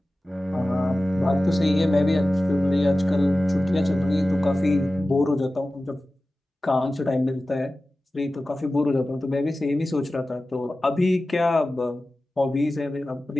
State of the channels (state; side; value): normal; both; correlation 0.96